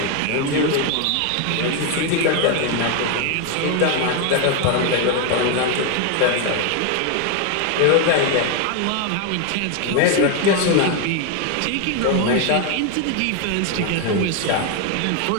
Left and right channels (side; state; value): both; different; correlation 0.01